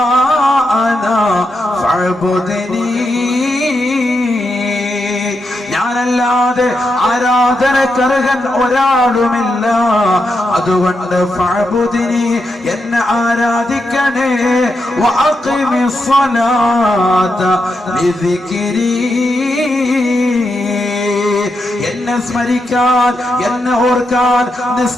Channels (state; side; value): normal; both; correlation 0.85